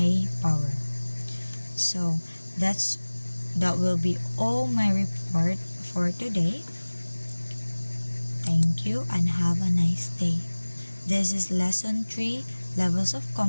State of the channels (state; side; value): inverted; both; correlation -1.00